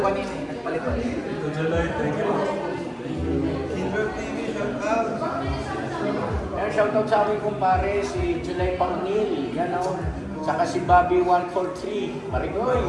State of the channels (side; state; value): both; identical; correlation 1.00